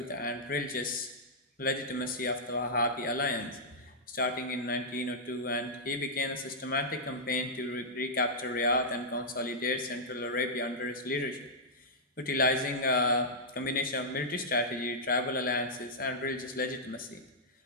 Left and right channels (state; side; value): normal; both; correlation -0.10